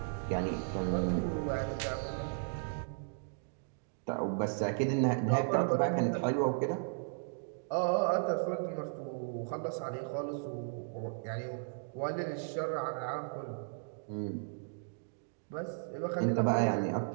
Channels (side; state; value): left; silent; digital silence